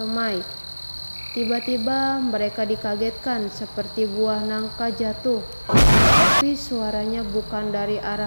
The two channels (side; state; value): both; inverted; correlation -1.00